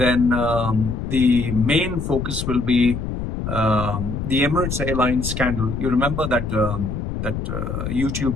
the main focus will be the Emirates Airlines scandal. You remember that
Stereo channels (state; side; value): noise; left; rumble, 4 dB below the sound